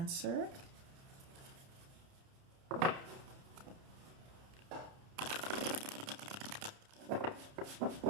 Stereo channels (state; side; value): late; left; 30 ms